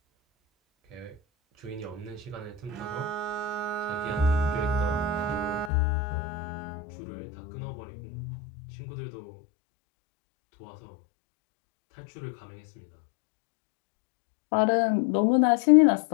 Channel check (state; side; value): drops out; right; at 5.7 s